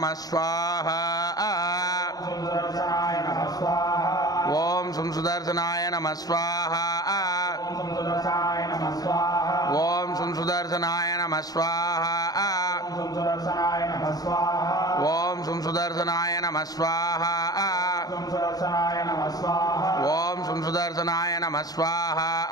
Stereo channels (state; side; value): late; right; 0.18 ms